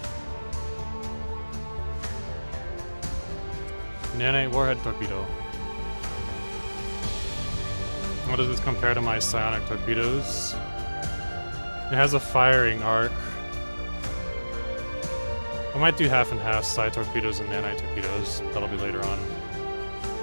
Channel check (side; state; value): both; inverted; correlation -1.00